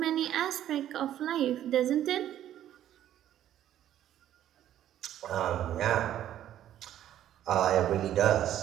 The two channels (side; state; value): left; quieter; 11.7 dB